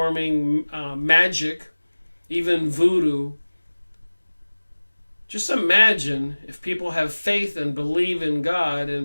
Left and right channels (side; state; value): both; inverted; correlation -1.00